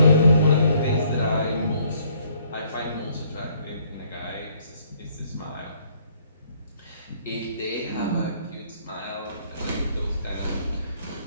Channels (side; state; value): both; inverted; correlation -0.65